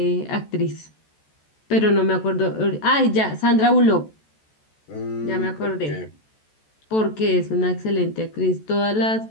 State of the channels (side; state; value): right; late; 14 ms